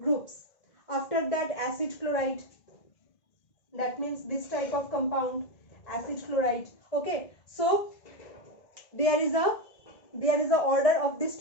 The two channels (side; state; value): right; late; 1.9 ms